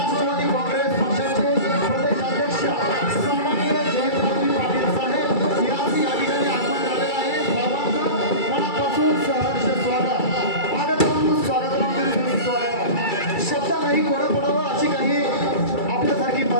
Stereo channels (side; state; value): right; late; 2.3 ms